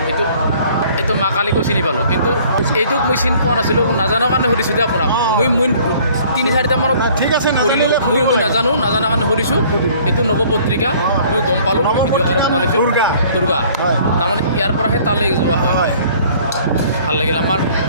কিন্তু এইটো মা কালীকো চিনি পালোঁ কিন্তু এইটোক মই চিনি পোৱা নাছিলোঁ নাজানাৰ কাৰণে সুধিছোঁ যে আপোনাক মই 3-4টা মানত ঠিক আছে কৰিলোঁ মই নাজানাৰ কাৰণে সুধিছোঁ এইটো নৱপত্ৰিকা মই গম পালোঁ ভিডিঅ' আকাৰে বনাইছোঁ দুৰ্গা তাৰমানে ইয়াৰ পৰাহে তালৈ যোৱা হয় ভাল লাগিল আমাৰ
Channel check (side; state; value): both; inverted; correlation -0.55